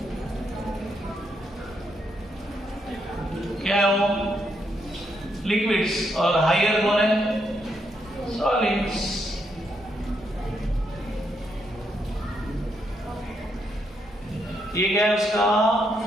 क्या है वो? लिक्विड्स। और हायर कौन है? सॉलिड्स। ये क्या है उसका?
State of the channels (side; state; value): both; normal; correlation 0.78